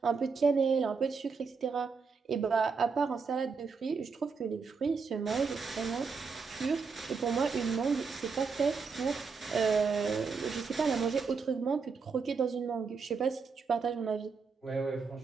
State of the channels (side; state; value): left; quieter; 5.1 dB